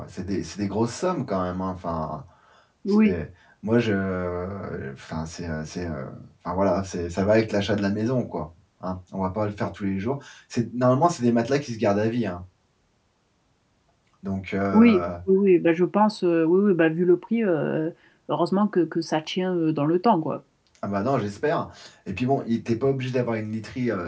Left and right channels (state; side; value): identical; both; correlation 1.00